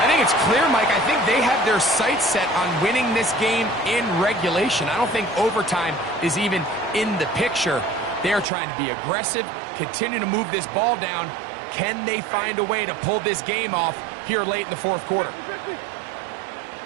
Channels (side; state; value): left; drops out; at 8.5 s